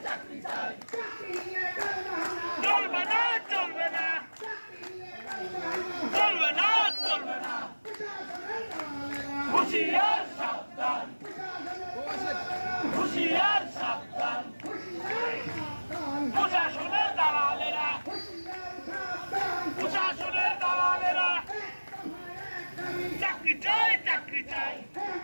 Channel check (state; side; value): inverted; both; correlation -1.00